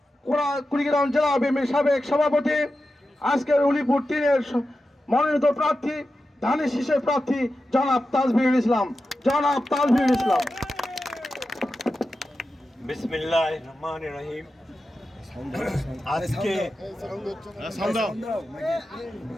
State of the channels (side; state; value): both; normal; correlation 0.91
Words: কুড়িগ্রাম জেলা বিএনপির সাবেক সভাপতি, আজকের উলিপুর 3-এর মনোনীত প্রার্থী, ধানের শীষের প্রার্থী জনাব তাজভিরুল ইসলাম। বিসমিল্লাহির রহমানির রহিম। আজকে